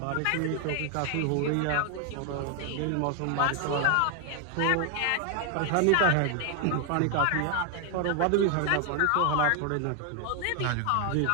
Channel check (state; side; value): different; both; correlation 0.01